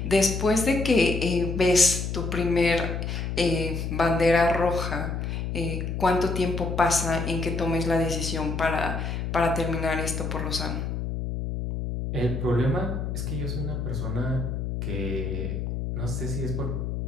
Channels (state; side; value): noise; left; hum, 3 dB below the sound